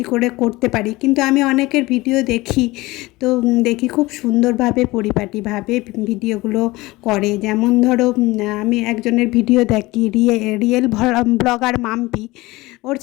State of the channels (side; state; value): right; quieter; 20.6 dB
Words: করে করতে পারি, কিন্তু আমি অনেকের ভিডিও দেখি, তো দেখি খুব সুন্দরভাবে পরিপাটিভাবে ভিডিওগুলো করে। যেমন ধরো আমি একজনের ভিডিও দেখি, রিয়েল ব্লগার মাম্পি, ওর